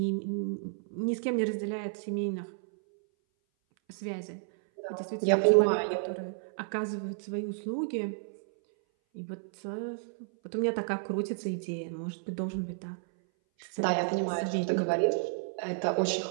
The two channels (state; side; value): silent; left; 57 dB below the other